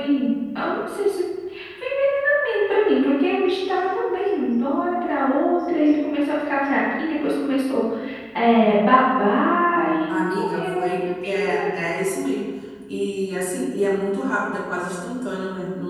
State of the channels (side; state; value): both; identical; correlation 1.00